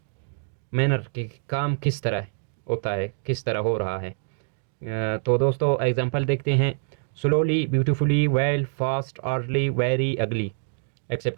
मैनर के काम किस तरह होता है, किस तरह हो रहा है। तो दोस्तों एग्जांपल देखते हैं। Slowly, beautifully, well, fast, orderly, very, अगली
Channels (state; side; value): silent; left; digital silence